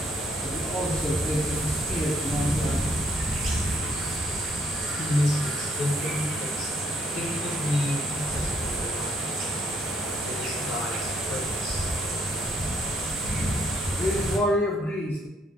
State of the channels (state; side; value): normal; both; correlation 0.69